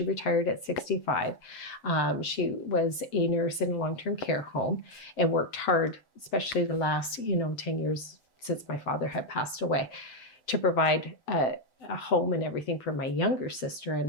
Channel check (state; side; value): late; right; 7.8 ms